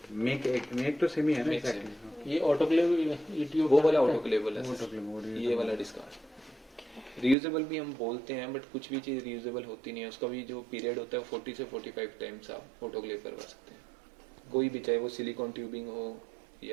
मेक तो सेम ही है ना? Make एक्चुअली ये ऑटोक्लेव ईटीओ वो वाला ऑटोक्लेवेबल है, ये वाला डिस्कार्ड। रीयूजेबल भी हम बोलते हैं, बट कुछ भी चीज़ रीयूजेबल होती नहीं है, उसका भी जो पीरियड होता है 40 से 45 टाइम्स आप ऑटोक्लेव करवा सकते हैं, कोई भी, चाहे वो सिलिकॉन ट्यूबिंग हो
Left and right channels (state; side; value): drops out; left; at 7.4 s